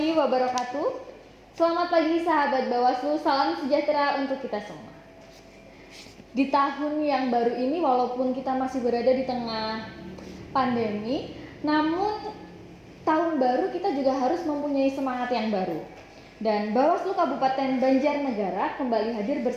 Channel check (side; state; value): both; identical; correlation 1.00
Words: wabarakatuh. Selamat pagi sahabat Bawaslu, salam sejahtera untuk kita semua. Di tahun yang baru ini, walaupun kita masih berada di tengah pandemi, namun tahun baru kita juga harus mempunyai semangat yang baru. Dan Bawaslu Kabupaten Banjarnegara kembali hadir